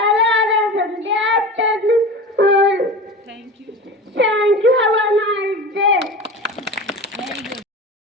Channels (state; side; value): normal; both; correlation 0.32